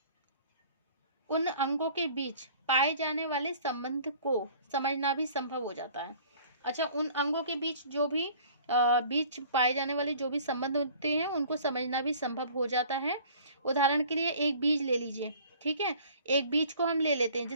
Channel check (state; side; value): inverted; both; correlation -0.50